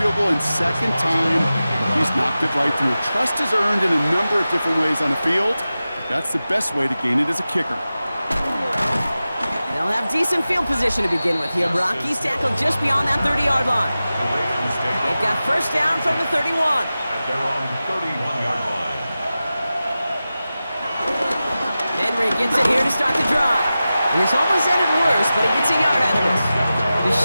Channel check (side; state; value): both; inverted; correlation -0.94